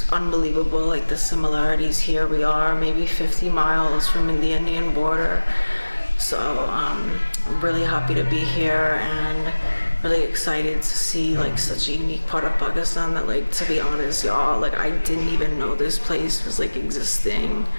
unbelievable, like the similarities here. We are maybe 50 miles from the Indian border, so I'm really happy to be here and really excited to see like such a unique part of Pakistan that, like, to be honest, y'all, like I didn't even know this place was like existing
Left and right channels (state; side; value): inverted; both; correlation -1.00